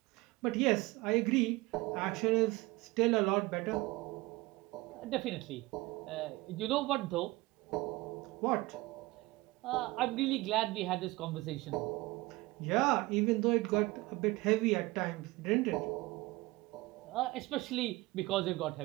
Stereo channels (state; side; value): quieter; left; 21.0 dB